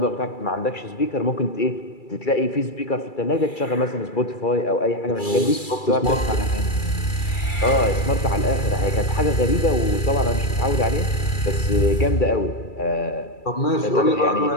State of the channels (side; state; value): right; late; 2.3 ms